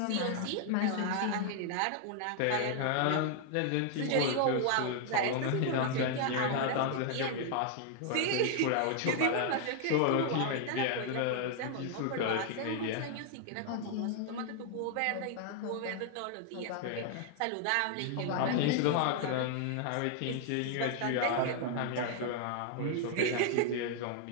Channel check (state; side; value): different; both; correlation 0.00